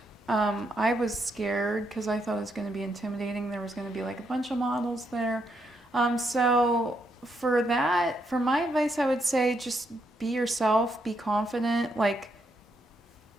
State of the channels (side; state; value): both; normal; correlation 0.78